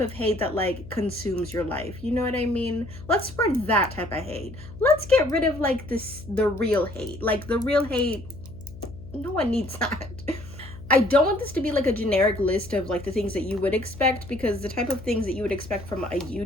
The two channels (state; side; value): noise; left; hum, 15 dB below the sound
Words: hate that like consumes your life. You know what I mean? Let's spread that type of hate. Let's get rid of like the real hate. Like the real hate, no one needs that. I don't want this to be like a generic list of like the things that you would expect, because the type of things that you would expect from a